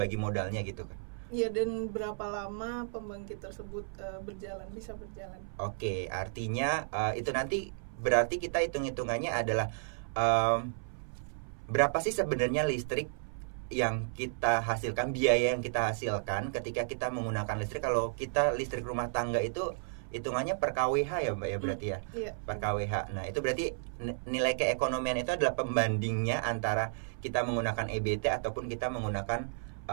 modalnya gitu kan. Iya, dan berapa lama pembangkit tersebut bisa berjalan. Oke, artinya itu nanti berarti kita hitung-hitungannya adalah berapa sih sebenarnya listrik yang kita hasilkan, biaya yang kita hasilkan ketika kita menggunakan listrik. Kalau kita listrik rumah tangga itu hitungannya per kWh ya Mbak ya berarti ya. Iya. Per kWh. Nah, itu berarti nilai keekonomian itu adalah pembandingnya antara kita menggunakan EBT ataupun kita menggunakan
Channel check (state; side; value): silent; left; 56 dB below the other